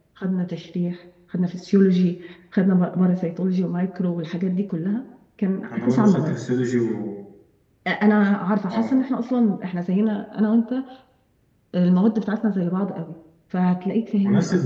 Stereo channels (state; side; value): identical; both; correlation 1.00